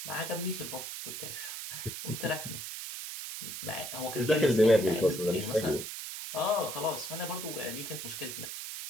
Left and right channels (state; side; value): noise; right; hiss, 7 dB below the sound